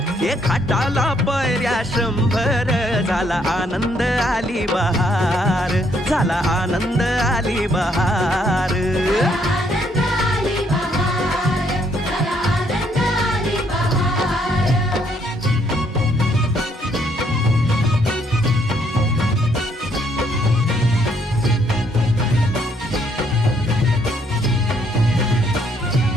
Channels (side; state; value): both; normal; correlation 0.70